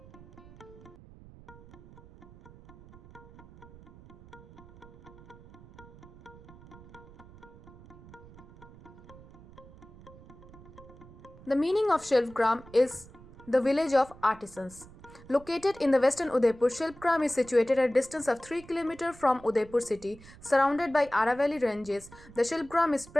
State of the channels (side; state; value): right; noise; rumble, 20 dB below the sound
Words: The meaning of Shilpgram is the village of artisans. Located in the western Udaipur, Shilpgram is situated at a distance of 3 km from Udaipur city, surrounded by Aravalli ranges. The Shilpgram is